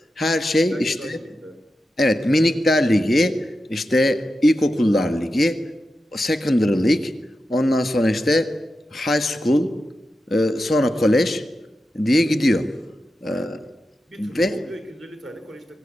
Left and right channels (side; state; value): both; normal; correlation 0.90